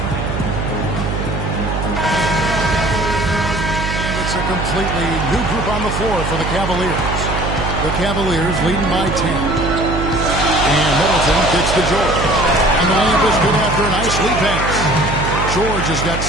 It's a completely new group on the floor for the Cavaliers. The Cavaliers leading by 10. And Middleton gets to George. And the layup is good after a nice lead pass. George has got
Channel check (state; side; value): noise; right; hum, 4 dB below the sound